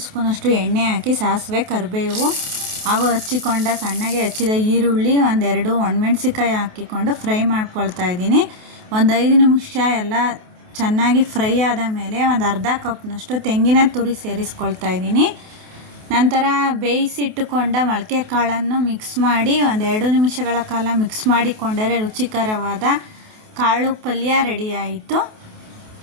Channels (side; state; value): left; late; 28 ms